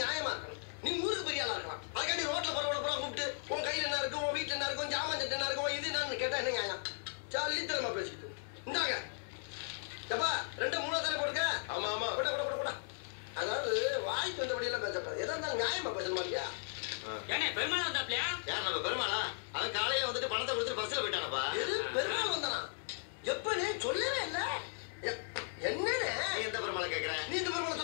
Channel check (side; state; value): right; silent; digital silence